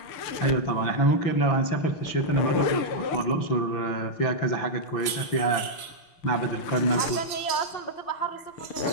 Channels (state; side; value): late; right; 6.0 ms